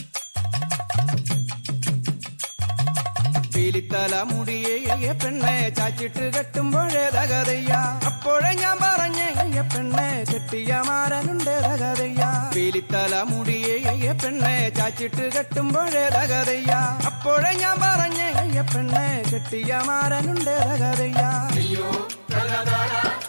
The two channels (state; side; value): inverted; both; correlation -1.00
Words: പീലിത്തല മുടിയേ പെണ്ണെ ചാച്ചിട്ട് കെട്ടുമ്പോഴേതകതയ്യ അപ്പോഴേ ഞാൻ പറഞ്ഞേ പെണ്ണെ കെട്ടിയ മാരനുണ്ടേതകതയ്യ പീലിത്തല മുടിയേ പെണ്ണെ ചാച്ചിട്ട് കെട്ടുമ്പോഴേതകതയ്യ അപ്പോഴേ ഞാൻ പറഞ്ഞേ പെണ്ണെ കെട്ടിയ മാരനുണ്ടേതകതയ്യ അയ്യോ തലതാര